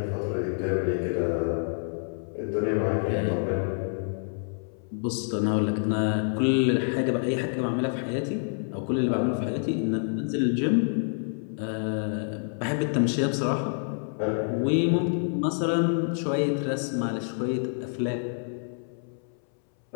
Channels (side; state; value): right; silent; 60 dB below the other